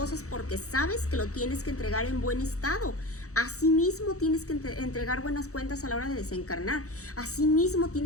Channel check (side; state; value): right; late; 0.65 ms